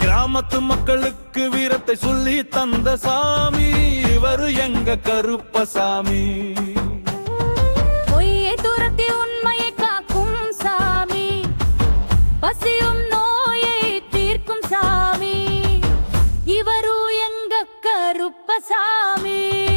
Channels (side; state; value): both; inverted; correlation -1.00